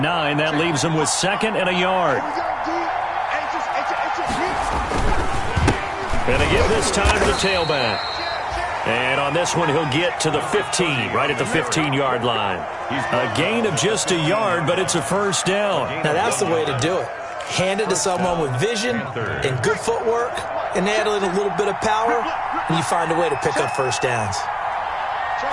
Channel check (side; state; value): both; identical; correlation 1.00